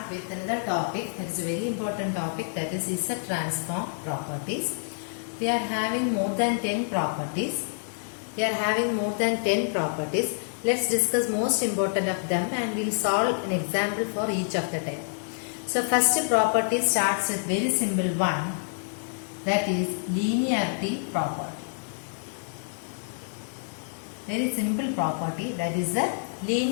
with another topic that is a very important topic, that is Z transform properties. We are having more than 10 properties. Let's discuss most important of them and we'll solve an example for each of the 10. So first property starts with very simple one, that is linearity property. Very simple property, that is the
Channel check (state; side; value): silent; right; 60 dB below the other